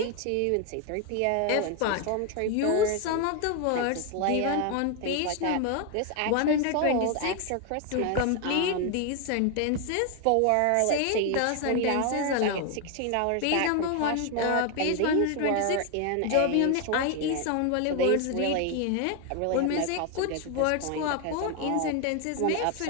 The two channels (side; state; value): both; different; correlation 0.01